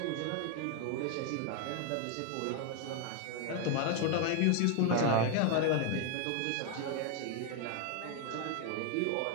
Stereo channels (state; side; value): different; both; correlation 0.01